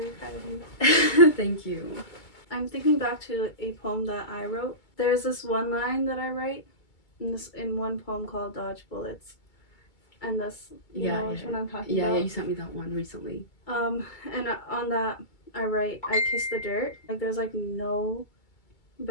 proud of you. Thank you. I'm thinking back to a poem that I wrote. There's this one line that I write in one poem called Dodge Bullets. And this, you know which one I'm talking about? Yeah, you sent me that one recently. And on that, I write, I kiss the dirt. Like, there's, like, no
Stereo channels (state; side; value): late; right; 2.2 ms